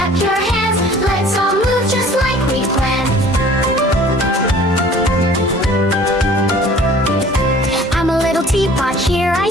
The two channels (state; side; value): normal; both; correlation 0.50